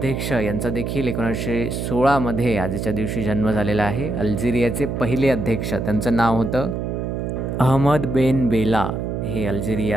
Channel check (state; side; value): noise; right; hum, 3 dB below the sound